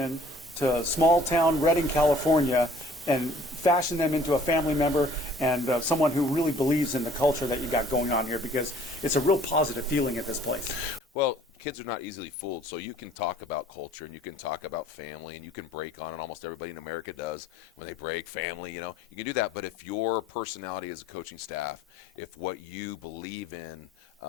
to small town Redding, California, and fashion them into a family member and someone who really believes in the culture that you got going on here? Because it's a real positive feeling at this place. Well, kids are not easily fooled, so you can talk about culture and you can talk about family and you can break on it. Almost everybody in America does when they break family, you can do that. But if your personality as a coaching staff, if what you believe in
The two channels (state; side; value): normal; both; correlation 0.55